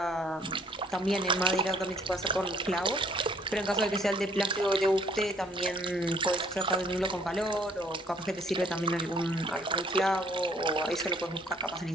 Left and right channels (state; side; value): normal; both; correlation 0.61